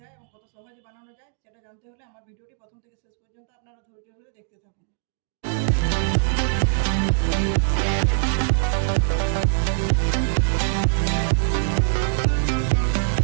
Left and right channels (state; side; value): silent; left; digital silence